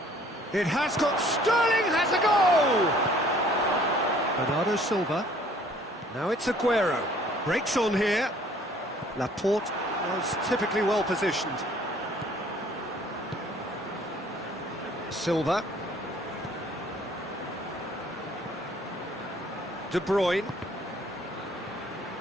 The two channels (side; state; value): both; normal; correlation 0.57